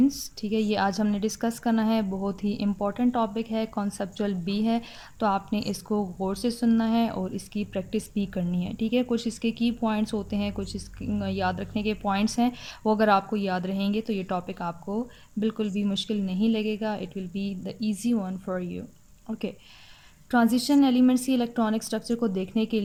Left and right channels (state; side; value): identical; both; correlation 1.00